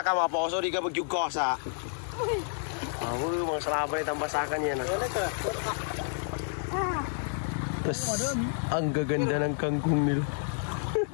ka mga poso, di ka magyugosa. Ako yung mga salabay tambasakan yan ah. Tapos, ang gaganda ng kangkong nila.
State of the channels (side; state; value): right; silent; 55 dB below the other